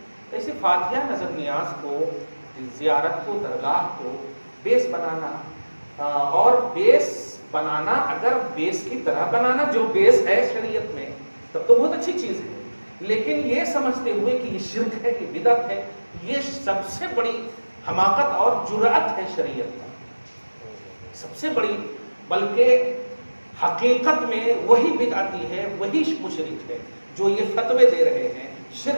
ایسے فاتحہ، نظر نیاز کو، زیارت کو، درگاہ کو بیس بنانا، اور بیس بنانا اگر بیس کی طرح بنانا جو بیس ہے شریعت میں تب تو بہت اچھی چیز ہے، لیکن یہ سمجھتے ہوئے کہ یہ شرک ہے، یہ بدعت ہے، یہ سب سے بڑی حماقت اور جرأت ہے شریعت کا، سب سے بڑی، بلکہ حقیقت میں وہی بدعتی ہے، وہی مشرک ہے جو یہ فتوے دے رہے ہیں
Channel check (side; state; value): both; inverted; correlation -1.00